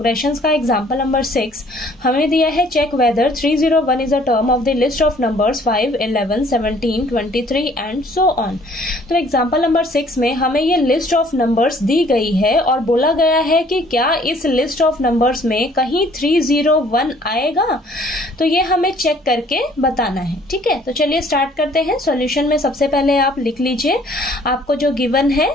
का एग्जांपल नंबर 6। हमें दिया है check whether 301 is a term of the list of numbers 5, 11, 17, 23 and so on. तो एग्जांपल नंबर 6 में हमें ये लिस्ट ऑफ नंबर्स दी गई है और बोला गया है कि क्या इस लिस्ट ऑफ नंबर्स में कहीं 301 आएगा। तो ये हमें चेक करके बताना है। ठीक है, तो चलिए स्टार्ट करते हैं। सॉल्यूशन में सबसे पहले आप लिख लीजिए आपको जो गिवन है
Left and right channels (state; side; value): normal; both; correlation 0.58